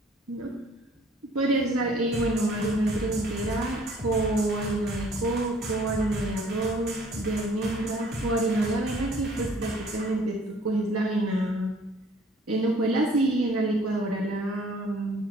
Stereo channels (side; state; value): both; normal; correlation 0.56